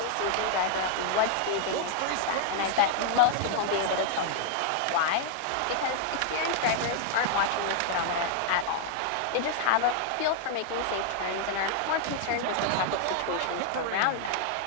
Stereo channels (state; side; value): different; both; correlation 0.00